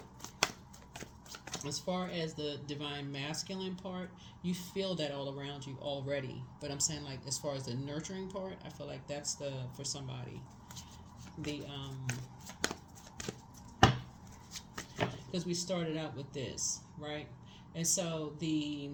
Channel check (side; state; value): both; identical; correlation 1.00